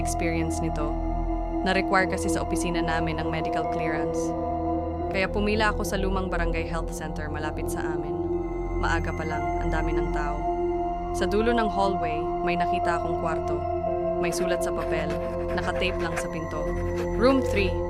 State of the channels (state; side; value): identical; both; correlation 1.00